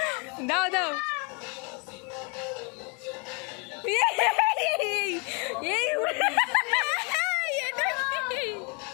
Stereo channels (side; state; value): right; quieter; 33.1 dB